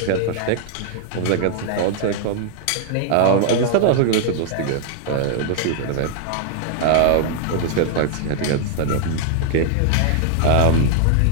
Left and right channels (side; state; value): both; different; correlation 0.00